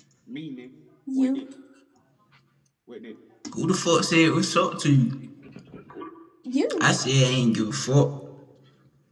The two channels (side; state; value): both; identical; correlation 1.00